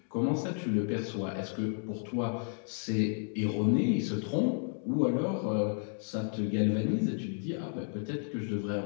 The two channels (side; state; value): right; silent; 56 dB below the other